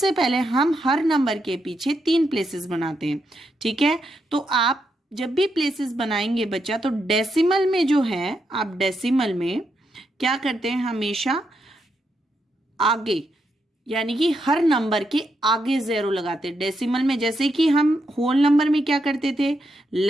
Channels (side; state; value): both; normal; correlation 0.82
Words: पहले हम हर नंबर के पीछे 3 प्लेसेस बनाते हैं। ठीक है, तो आप जब भी प्लेसेस बनाएंगे बच्चा, तो डेसिमल में जो है, आप डेसिमल में क्या करते हैं, हमेशा आगे, यानी कि हर नंबर के आगे 0 लगाते हैं। डेसिमल में जैसे कि हम होल नंबर में क्या करते थे,